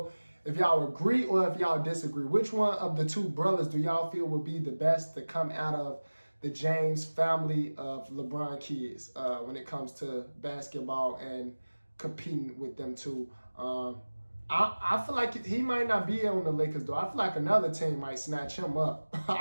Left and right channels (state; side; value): inverted; both; correlation -1.00